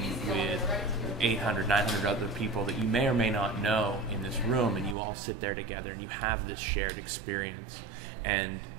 with 800, 900 other people that you may or may not know in this room, and you all sit there together and you have this shared experience. And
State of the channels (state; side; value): drops out; left; at 5.0 s